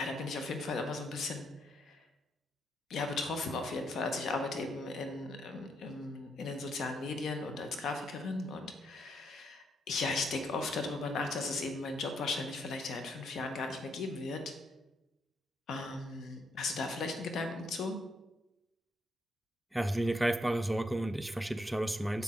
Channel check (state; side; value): normal; both; correlation 0.77